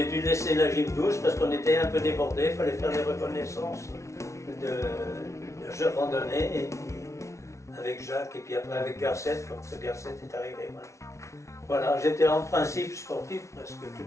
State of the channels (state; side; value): late; right; 0.14 ms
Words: dû laisser la gym douce parce qu'on était un peu débordés, il fallait faire les reconnaissances de randonnée, et puis avec Jacques, et puis après avec Garcette, quand Garcette est arrivé. Voilà, j'étais en principe sportif presque